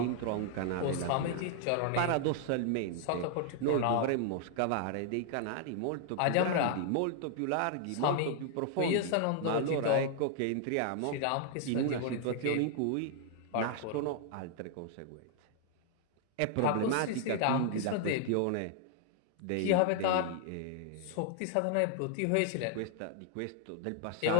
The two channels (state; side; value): different; both; correlation 0.00